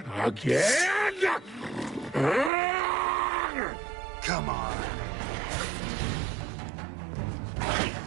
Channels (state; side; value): drops out; left; at 2.5 s